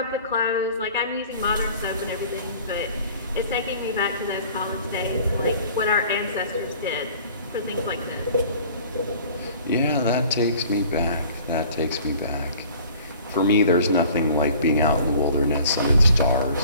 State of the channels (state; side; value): inverted; both; correlation -0.48